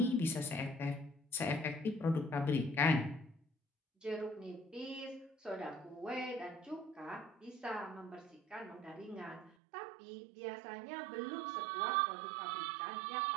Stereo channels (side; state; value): left; drops out; at 9.6 s